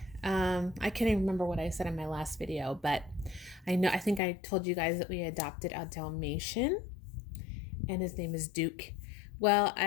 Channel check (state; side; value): drops out; right; at 4.2 s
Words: I can't even remember what I said in my last video, but I think I told you guys that we adopted a Dalmatian and his name is Duke. Well,